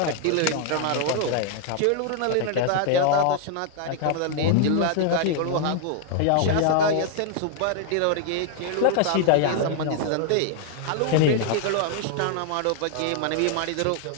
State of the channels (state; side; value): different; both; correlation 0.00